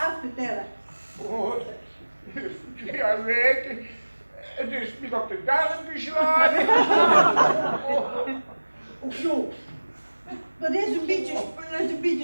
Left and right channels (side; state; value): both; inverted; correlation -1.00